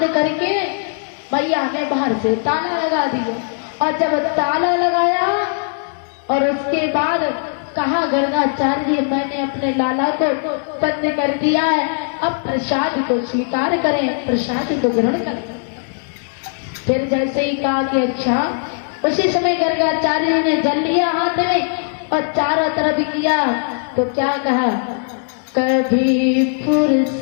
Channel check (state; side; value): silent; right; 61 dB below the other